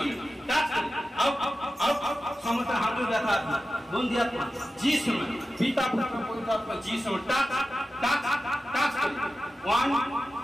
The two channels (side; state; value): both; normal; correlation 0.93